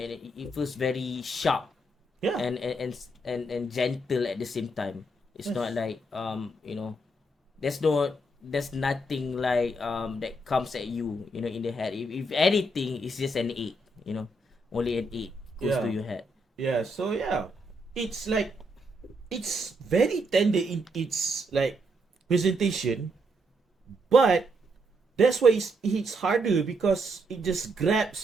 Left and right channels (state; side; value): normal; both; correlation 0.77